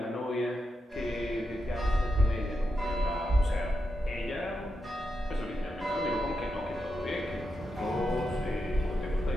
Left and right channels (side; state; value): both; normal; correlation 0.86